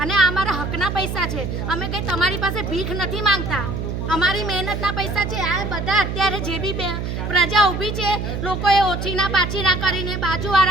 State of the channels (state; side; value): noise; right; hum, 4 dB below the sound